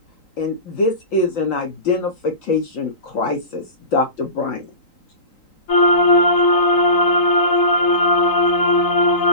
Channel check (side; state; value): right; late; 3.8 ms